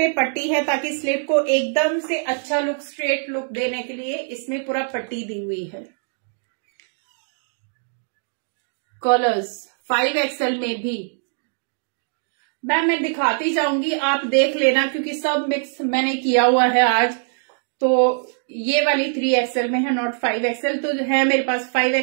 पट्टी है ताकि स्लिट को एकदम से अच्छा लुक, स्ट्रेट लुक देने के लिए इसमें पूरा पट्टी दी हुई है। कलर्स 5XL में भी मैम मैं दिखाती जाऊंगी, आप देख लेना, क्योंकि सब मिक्स मैंने किया हुआ है आज। तो ये वाली 3XL में है, नॉट 5XL। तो है मेरे पास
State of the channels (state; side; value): silent; left; digital silence